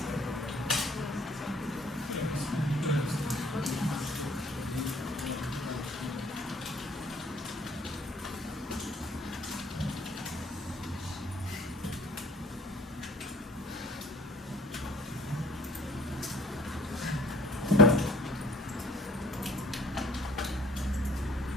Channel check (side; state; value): both; normal; correlation 0.55